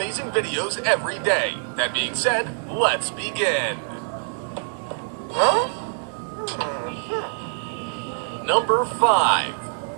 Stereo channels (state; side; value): silent; left; digital silence